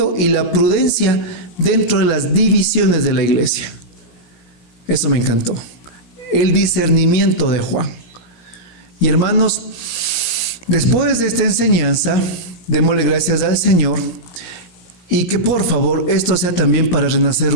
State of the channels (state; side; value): late; right; 17 ms